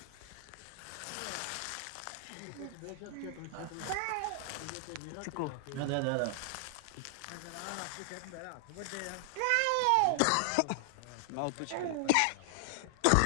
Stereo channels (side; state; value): both; different; correlation 0.00